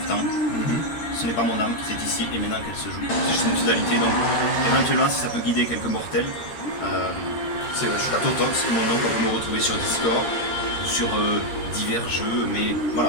Ce n'est pas mon âme, c'est ici et maintenant qu'elle se joue. C'est juste une pseudalité, donc éventuellement, si ça peut guider quelques mortels, C'est vrai, je suis d'accord. Totox, mon nom, on peut me retrouver sur Discord ou sur divers jeux, mais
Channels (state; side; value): late; right; 13 ms